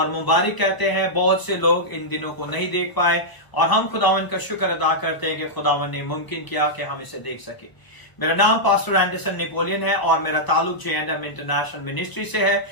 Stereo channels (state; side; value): late; right; 1.0 ms